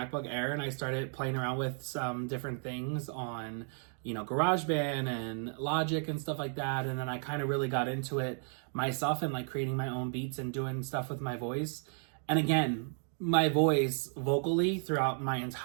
Air and I started playing around with some different things on, GarageBand and Logic and stuff like that. And then I kind of really got into it myself and like creating my own beats and doing stuff with my voice. And again, my voice vocally throughout my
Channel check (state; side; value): silent; left; 55 dB below the other